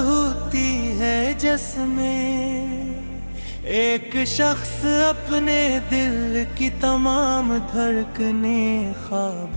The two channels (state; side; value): inverted; both; correlation -1.00